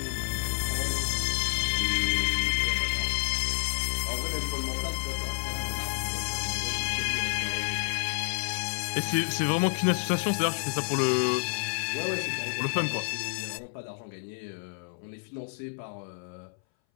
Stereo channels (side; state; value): right; silent; 58 dB below the other